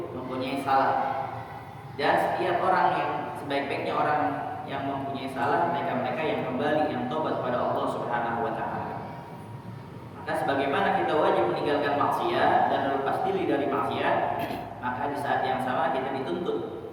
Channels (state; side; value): identical; both; correlation 1.00